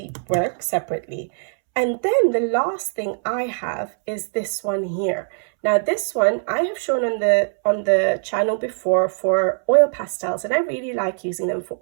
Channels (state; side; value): silent; left; 64 dB below the other